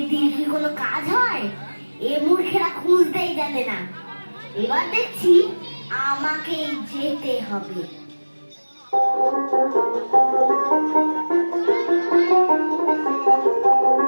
কি কোনো কাজ হয়? এ মূর্খেরা খুঁজতেই জানে না। এবার দেখছি আমাকেই যেতে হবে।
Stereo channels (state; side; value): inverted; both; correlation -1.00